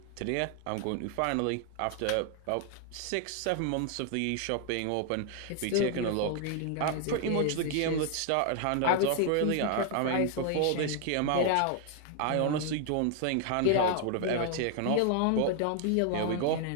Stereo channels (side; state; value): both; different; correlation 0.00